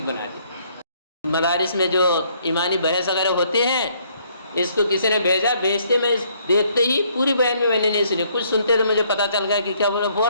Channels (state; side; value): inverted; both; correlation -0.66